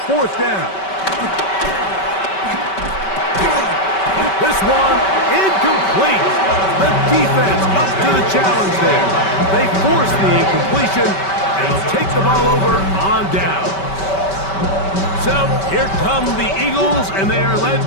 fourth down. This one incomplete. The defense up to the challenge there. They force the incompletion, and they'll take the ball over on down. So here come the Eagles, and they are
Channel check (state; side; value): late; right; 5.2 ms